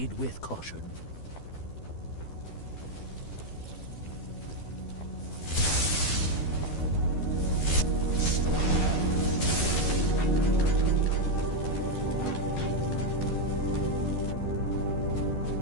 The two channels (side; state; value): right; late; 12 ms